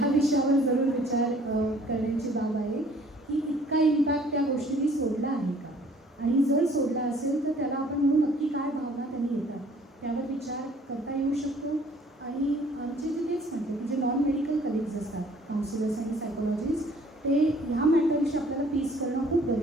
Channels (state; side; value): normal; both; correlation 0.56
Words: विषयावर जरूर विचार करण्याची बाब आहे की इतका इम्पॅक्ट त्या गोष्टींनी सोडला आहे का, आणि जर सोडला असेल तर त्याला आपण म्हणून नक्की काय भावना त्यांनी येतात त्यावर विचार करता येऊ शकतो. आणि आमचे जे तेच म्हणते की जे नॉन मेडिकल कलिग्स असतात, काउन्सिलर्स आणि सायकोलॉजिस्ट, ते ह्या मॅटरविषयी आपल्याला पीस करणं खूप